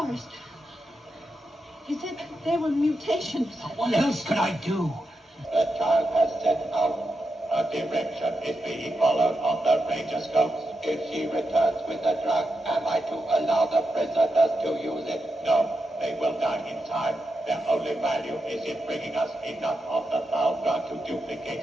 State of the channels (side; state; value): both; normal; correlation 0.87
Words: He said they were mutations. What else could I do? The child has set out. A direction is being followed on the radioscopes. If she returns with the drug, am I to allow the prisoners to use it? No, they will die in time. Their only value is in bringing us enough of the foul drug to duplicate